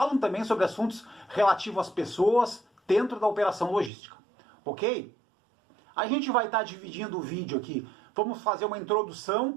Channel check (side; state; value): left; drops out; at 3.9 s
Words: também sobre assuntos relativos às pessoas dentro da operação logística. Ok? A gente vai estar dividindo o vídeo aqui. Vamos fazer uma